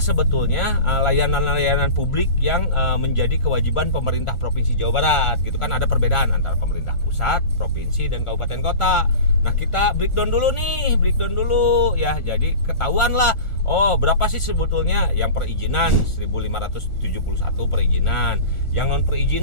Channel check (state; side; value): late; right; 1.4 ms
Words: layanan-layanan publik yang menjadi kewajiban pemerintah Provinsi Jawa Barat gitu kan. Ada perbedaan antara pemerintah pusat, provinsi, dan kabupaten kota. Nah, kita breakdown dulu ya. Jadi ketahuan lah, oh berapa sih sebetulnya yang perizinan 1571 perizinan, yang non